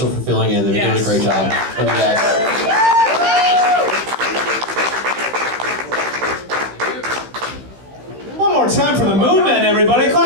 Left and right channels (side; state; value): left; late; 15 ms